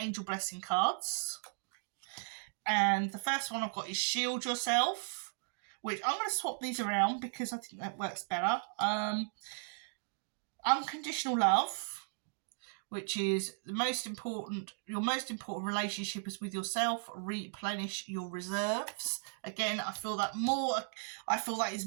blessing cards. And the first one I've got is Shield Yourself, which I'm going to swap these around because I think that works better. Unconditional Love, which is your most important relationship is with yourself. Replenish your reserves. Again, I feel that is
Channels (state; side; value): silent; left; digital silence